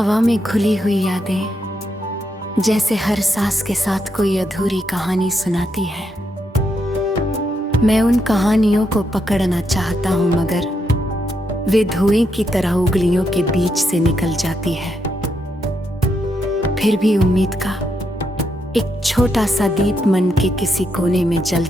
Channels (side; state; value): both; normal; correlation 0.80